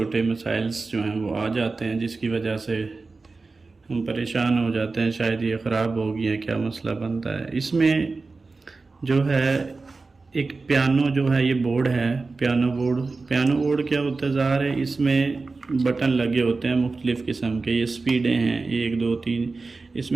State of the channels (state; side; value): quieter; left; 3.9 dB